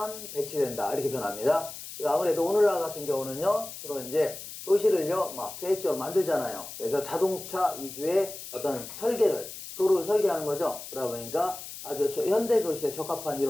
배치된다. 이렇게 변합니다. 아무래도 오늘날 같은 경우는요, 주로 이제 도시를요, 막 계획적으로 만들잖아요. 그래서 자동차 위주의 어떤 도로를 설계하는 거죠. 그러다 보니까 아주 현대 도시에 적합한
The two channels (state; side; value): noise; left; hiss, 11 dB below the sound